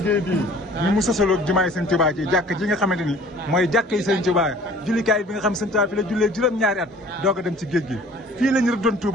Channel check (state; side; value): normal; both; correlation 0.50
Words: bii ni mu sosaloo jumaay Sëñ Tuubaa ji jàkk ji nga xamante ni mooy jàkk yi Sëñ Tuubaa jullikaay bi nga xam Sëñ Tuubaa fi la jullee juróom-ñaari at doog a dem ci géej gi fii lañu rëddoon